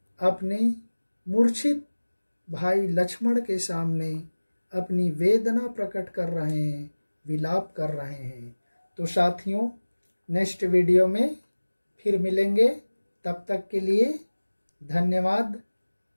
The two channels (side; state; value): both; inverted; correlation -1.00